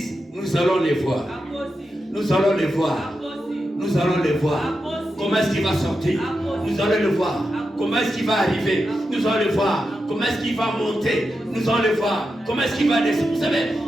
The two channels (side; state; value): both; normal; correlation 0.88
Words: nous allons les voir. Nous allons les voir. Nous allons les voir. Comment est-ce qu'il va sortir? Nous allons le voir. Comment est-ce qu'il va arriver? Nous allons le voir. Comment est-ce qu'il va monter? Nous allons le voir. Comment est-ce qu'il va descendre? Vous savez,